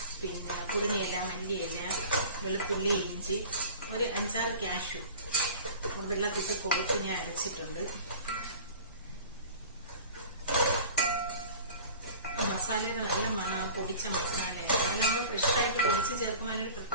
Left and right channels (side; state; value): both; inverted; correlation -0.41